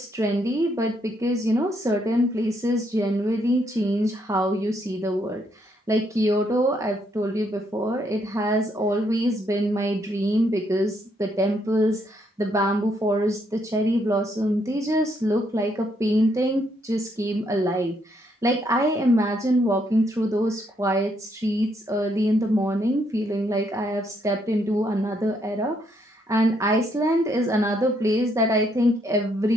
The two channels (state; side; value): normal; both; correlation 0.73